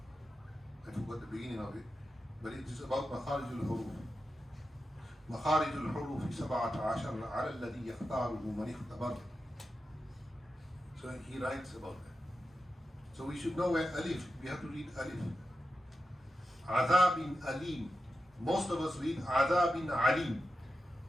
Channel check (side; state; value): both; normal; correlation 0.90